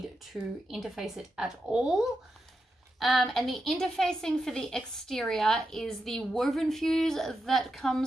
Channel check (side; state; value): both; normal; correlation 0.87